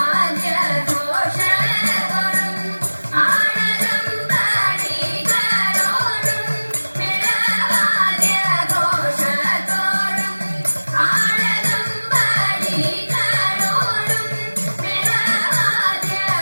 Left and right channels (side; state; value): both; inverted; correlation -1.00